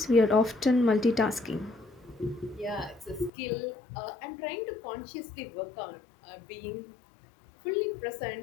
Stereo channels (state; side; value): drops out; right; at 3.3 s